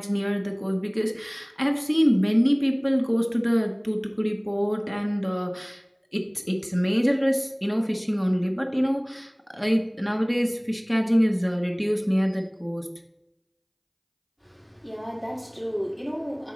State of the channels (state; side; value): identical; both; correlation 1.00